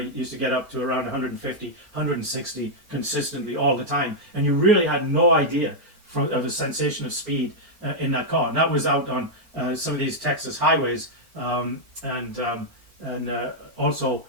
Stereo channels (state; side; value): late; left; 4.4 ms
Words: to get up to around 150, 160 consistently all the time. And you really had no idea of the sensation of speed in that car. And that was out on some of these Texas highways, and also